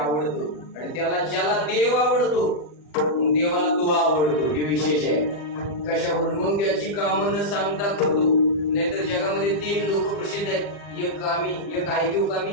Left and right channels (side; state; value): right; late; 40 ms